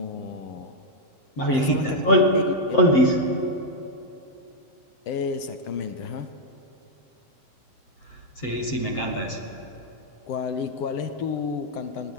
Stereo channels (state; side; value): late; right; 7.7 ms